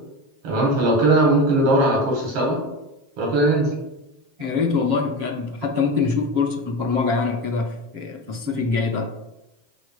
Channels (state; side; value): late; left; 7.4 ms